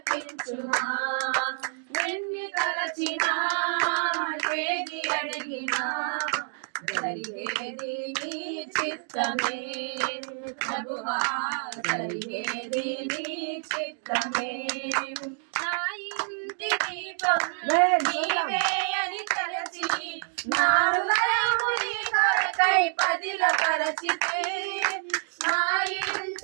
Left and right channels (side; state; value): left; silent; 60 dB below the other